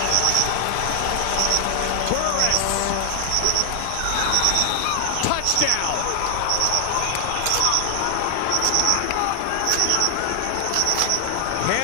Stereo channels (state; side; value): different; both; correlation 0.00